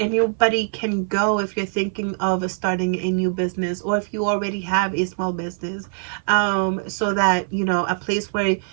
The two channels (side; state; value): left; silent; 56 dB below the other